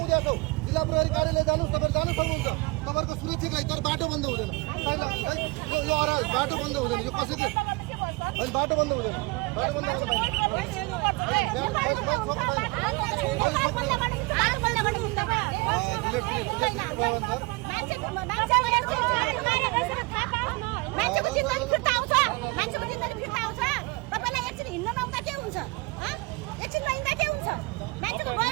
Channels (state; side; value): quieter; left; 25.8 dB